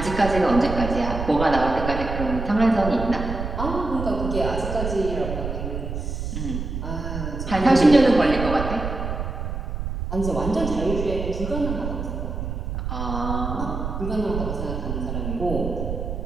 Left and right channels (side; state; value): right; noise; rumble, 4 dB below the sound